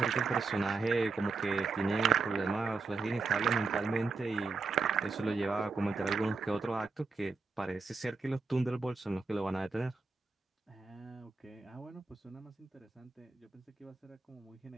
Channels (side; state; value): left; quieter; 4.2 dB